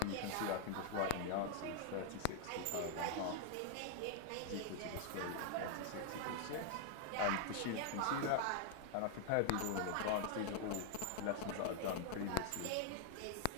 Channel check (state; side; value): different; both; correlation 0.00